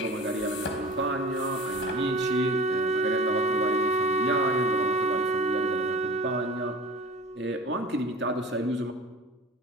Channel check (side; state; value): both; normal; correlation 0.39